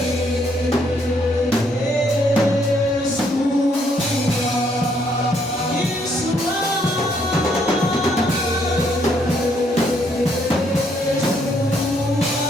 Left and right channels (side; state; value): both; normal; correlation 0.70